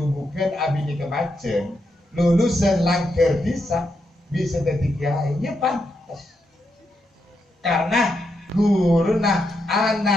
abini kemacen, lulusan langker bisa jadi kiai, ya pantas. Karena guru nah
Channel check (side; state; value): both; normal; correlation 0.83